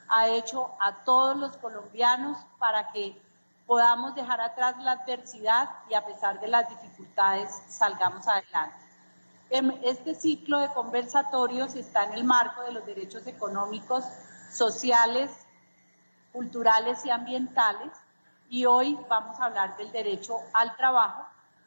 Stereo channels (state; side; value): inverted; both; correlation -1.00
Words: ha hecho a todos los colombianos para que podamos dejar atrás la adversidad y a pesar de las dificultades salgamos adelante. Este ciclo de conversatorios está en el marco de los derechos económicos, sociales, culturales y ambientales, y hoy vamos a hablar del derecho al trabajo.